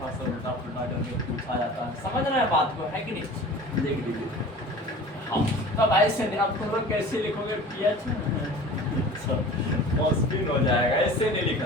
सा उल्टा पुल्टा करके पूछा जाता है, समझ रहे हैं बात को, है कि नहीं। देख लीजिए हाँ तब ऐसे नहीं, अब तुम लोग कैसे लिखोगे पीएच, मुश्किल हो जाएगा, ऐसे नहीं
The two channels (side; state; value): both; normal; correlation 0.40